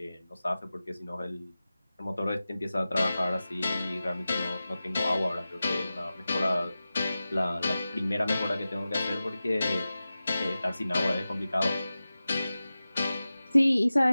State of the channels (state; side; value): inverted; both; correlation -0.95